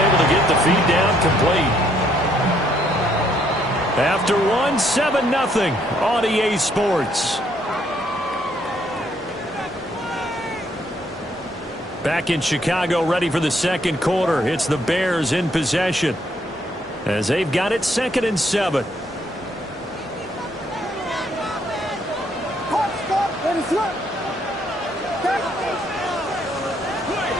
to get the feed down complete. After 1, 7-0 on EA Sports. Back in Chicago, ready for the 2nd quarter. It's the Bears in possession as they've got it 2nd and 7.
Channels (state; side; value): normal; both; correlation 0.70